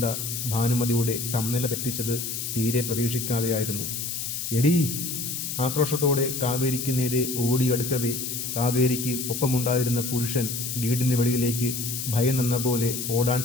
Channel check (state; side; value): noise; left; hiss, 4 dB below the sound